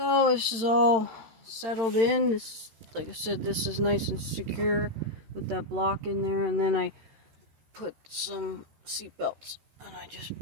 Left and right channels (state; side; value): late; left; 13 ms